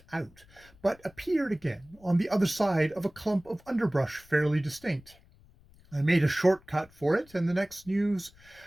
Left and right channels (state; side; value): noise; left; rumble, 27 dB below the sound